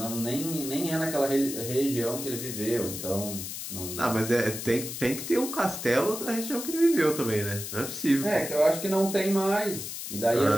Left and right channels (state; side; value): noise; left; hiss, 7 dB below the sound